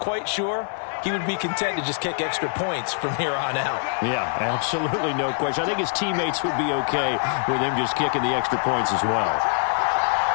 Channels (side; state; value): right; silent; 62 dB below the other